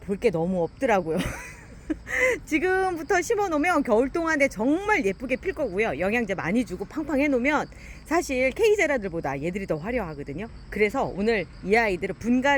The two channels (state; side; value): identical; both; correlation 1.00